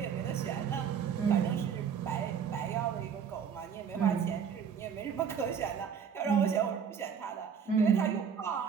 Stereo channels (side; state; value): left; quieter; 7.2 dB